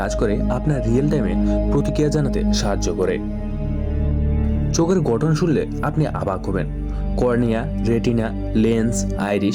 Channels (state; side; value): identical; both; correlation 1.00